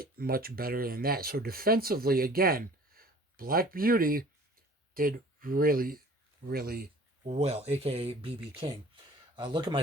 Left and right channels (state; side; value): normal; both; correlation 0.48